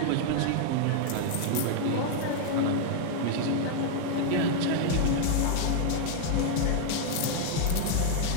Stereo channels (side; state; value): both; different; correlation -0.01